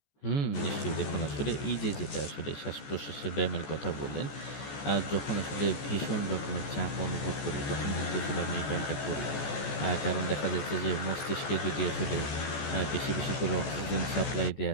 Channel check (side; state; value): right; late; 14 ms